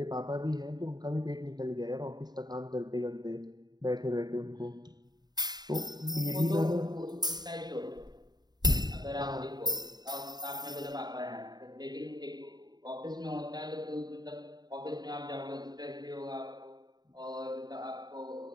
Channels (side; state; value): left; late; 0.20 ms